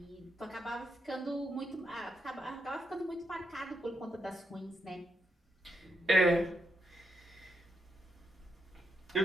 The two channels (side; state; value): both; normal; correlation 0.81